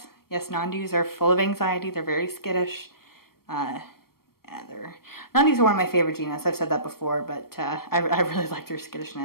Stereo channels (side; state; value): right; late; 0.94 ms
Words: non-dus are full of anxiety. They're very skittish. Non-dus are one of my favorite genus. I've said that before, but I really like their